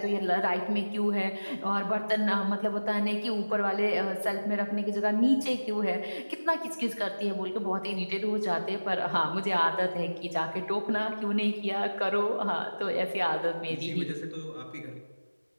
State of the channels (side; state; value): both; inverted; correlation -1.00